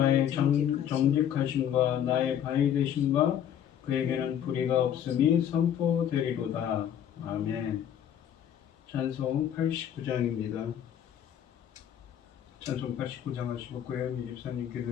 정직하심과 나의 바위 되심과 그에게는 불의가 없음이 선포되리로다. 아멘. 찬송 89장입니다. 찬송 89장 하시고 고현미 집사님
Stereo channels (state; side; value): quieter; right; 9.8 dB